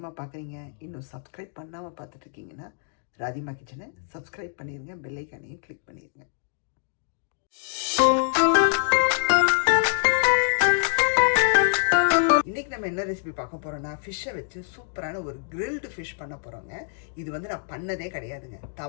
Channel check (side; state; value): right; silent; digital silence